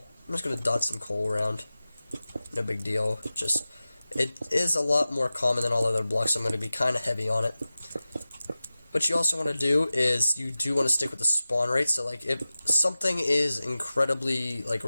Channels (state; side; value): inverted; both; correlation -0.96